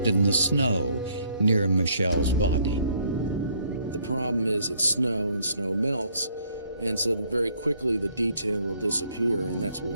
in the snow near Michelle's body. The problem is it's snow, and snow melts, and so very quickly the detail will disappear, and that's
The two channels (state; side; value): inverted; both; correlation -0.66